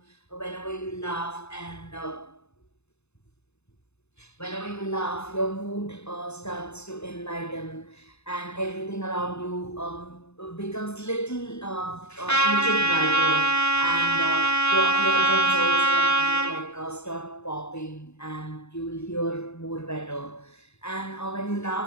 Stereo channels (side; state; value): right; late; 0.81 ms